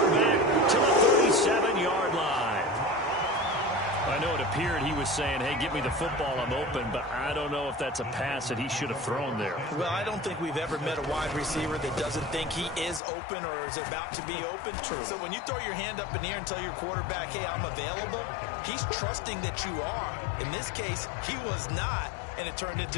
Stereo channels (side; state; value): right; drops out; at 13.0 s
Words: back to the 37-yard line. I know it appeared he was saying, hey, give me the football, I'm open, but I don't know if that's a pass that he should have thrown there. Well, I don't think we've ever met a wide receiver that doesn't think he is open or is about to be open. True. So when you throw your hand up in the air and tell your quarterback, hey, I'm available, he's trusting that you are. In this case, he was not, and it turned